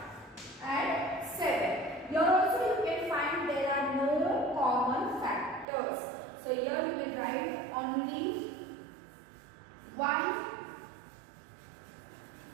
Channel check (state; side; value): drops out; left; at 5.7 s